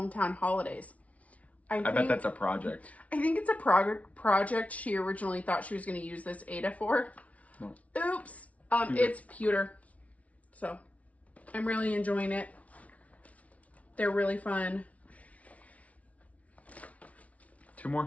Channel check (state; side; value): late; right; 0.066 ms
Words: Holidays. I bet that's a project. I think it's a project she originally thought she was going to use this Ada for. No. Oops. It's pewter. So, I'm really enjoying it. They're really fun. 2